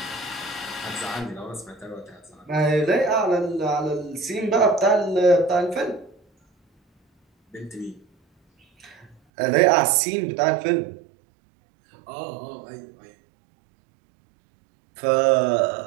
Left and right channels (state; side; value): drops out; left; at 9.2 s